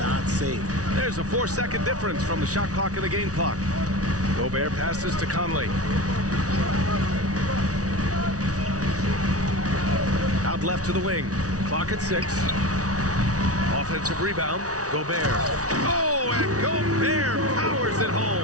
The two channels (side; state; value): left; late; 0.67 ms